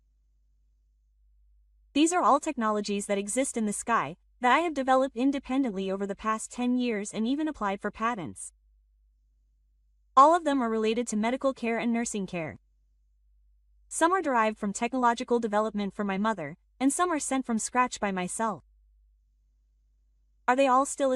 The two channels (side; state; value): both; identical; correlation 1.00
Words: These are all technologies that exist in the sky, that I have developed independently over the past 10 years and even applied for patents. All of them are related to medical care and nursing care. Some are derived from technological development for my mother, and some are sent from scratch by myself. Are they all still